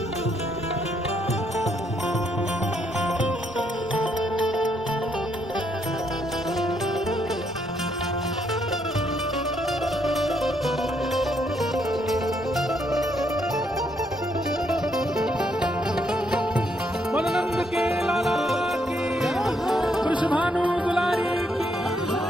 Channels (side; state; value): both; normal; correlation 0.74